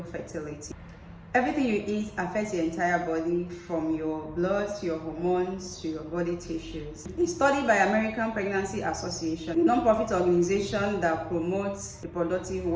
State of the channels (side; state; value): both; identical; correlation 1.00